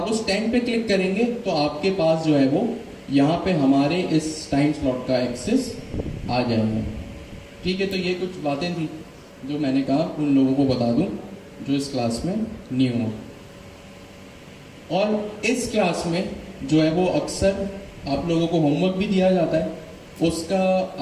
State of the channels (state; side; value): identical; both; correlation 1.00